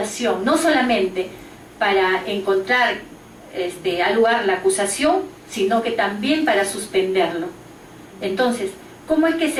no solamente para encontrar al lugar la acusación, sino que también para suspenderlo. Entonces, ¿cómo es que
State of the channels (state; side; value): identical; both; correlation 1.00